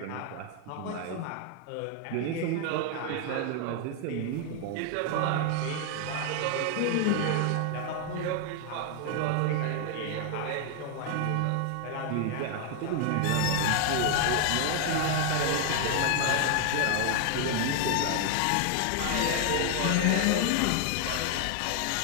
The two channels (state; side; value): different; both; correlation 0.00